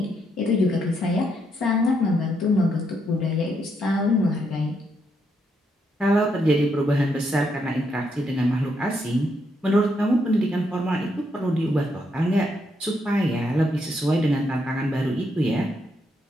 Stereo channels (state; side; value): normal; both; correlation 0.77